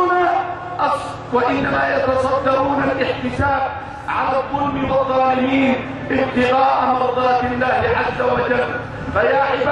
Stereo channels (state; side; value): identical; both; correlation 1.00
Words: يتصدرون الاحتساب على الظلم والظالمين ابتغاء مرضات الله عز وجل. فيا